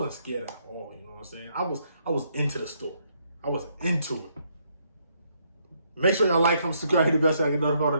scared at all. You know what I'm saying? I was into the story. I was into it. Make sure y'all like, comment, subscribe, hit the bell so I can notify when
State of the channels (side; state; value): both; inverted; correlation -0.73